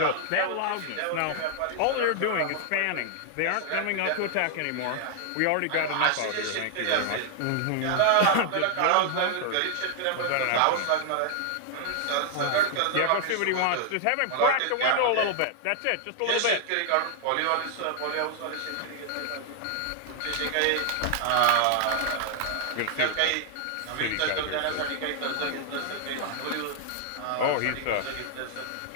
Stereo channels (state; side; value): different; both; correlation 0.00